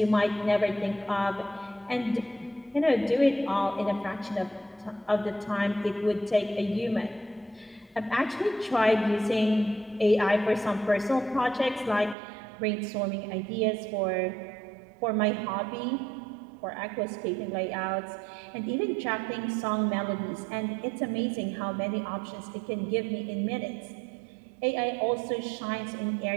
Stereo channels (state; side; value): drops out; left; at 12.2 s